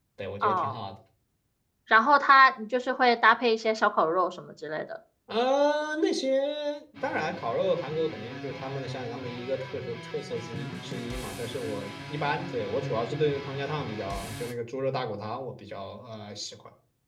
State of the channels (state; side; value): identical; both; correlation 1.00